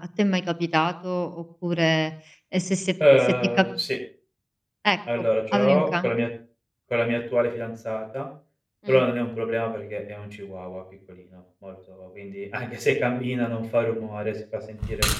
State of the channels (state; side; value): identical; both; correlation 1.00